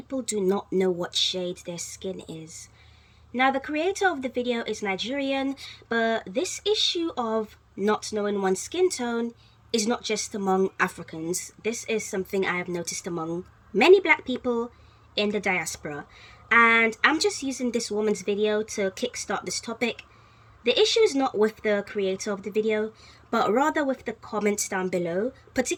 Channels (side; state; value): both; identical; correlation 1.00